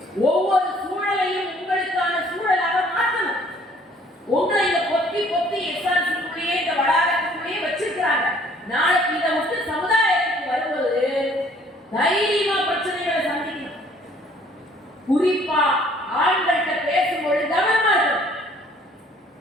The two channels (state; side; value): normal; both; correlation 0.58